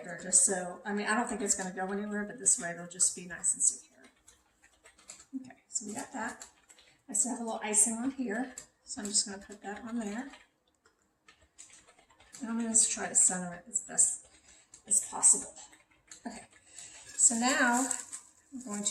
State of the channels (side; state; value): both; identical; correlation 1.00